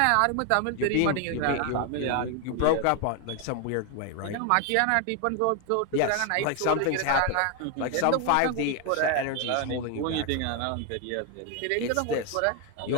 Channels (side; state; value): both; different; correlation 0.01